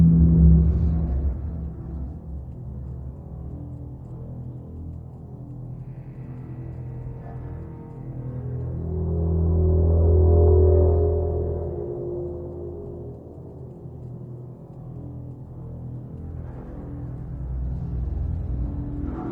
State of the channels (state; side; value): identical; both; correlation 1.00